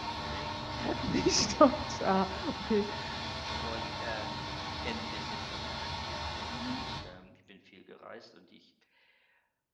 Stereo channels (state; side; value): identical; both; correlation 1.00